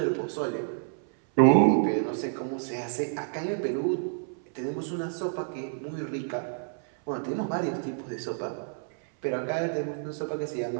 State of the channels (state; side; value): silent; left; 59 dB below the other